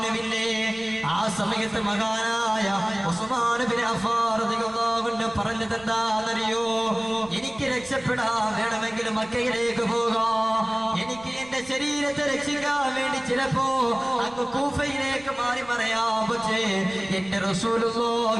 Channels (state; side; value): noise; right; rumble, 23 dB below the sound